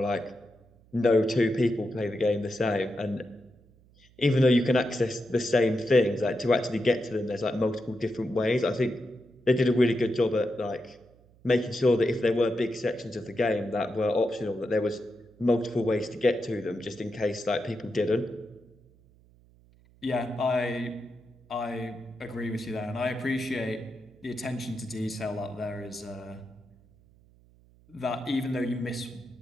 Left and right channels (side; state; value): right; noise; hum, 29 dB below the sound